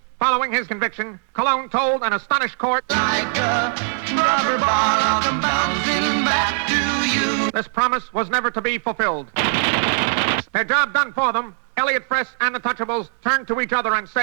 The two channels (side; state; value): left; silent; 65 dB below the other